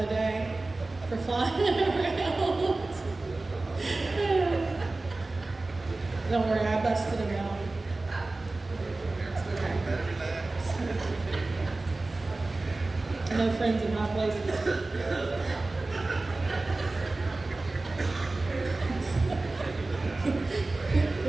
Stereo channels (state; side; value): quieter; left; 3.2 dB